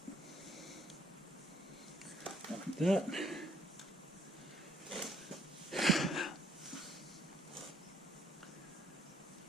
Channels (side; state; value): both; normal; correlation 0.65